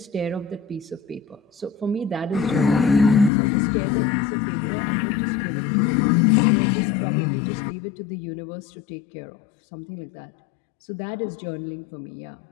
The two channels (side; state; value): right; drops out; at 3.3 s